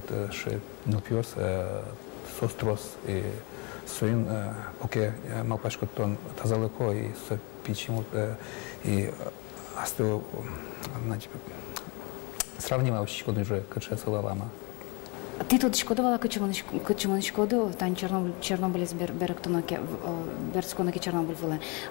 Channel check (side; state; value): right; quieter; 30.2 dB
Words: ше нупьёс сострос и своим поке малпашко тон тазалыко и со пичему и астыл, значит, сравнивал щичко уже качается лама. Ти тут шкодувала качому шкоду, тань Чернобыль з Беректоноке, Берцконоке Чернобыль вели.